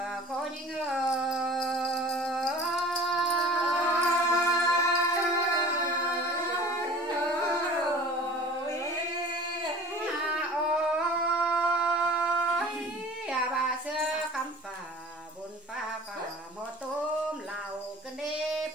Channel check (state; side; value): normal; both; correlation 0.43